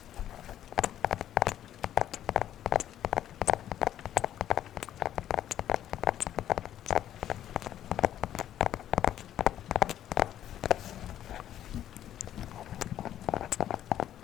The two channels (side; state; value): right; quieter; 11.4 dB